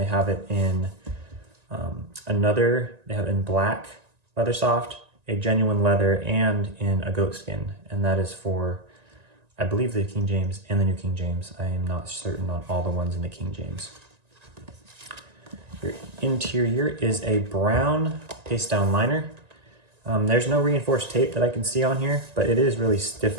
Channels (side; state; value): left; late; 1.9 ms